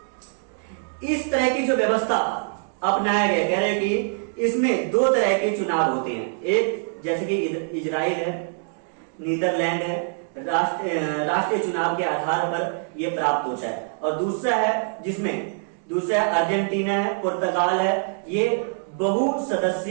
इस तरह की जो व्यवस्था अपनाया गया, कह रहे कि इसमें 2 तरह के चुनाव होते हैं। एक जैसे कि इजराइल है, नीदरलैंड है, राष्ट्रीय चुनाव के आधार पर यह प्राप्त होता है। और दूसरा अर्जेंटीना है, पुर्तगाल है, ये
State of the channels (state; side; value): silent; left; 62 dB below the other